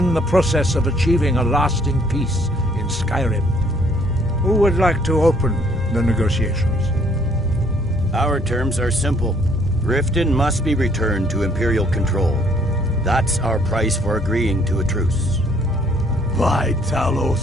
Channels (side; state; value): both; normal; correlation 0.63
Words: the process of achieving a lasting peace in Skyrim. Who would like to open the negotiations? Our terms are simple. Riften must be returned to Imperial control. That's our price for agreeing to a truce. By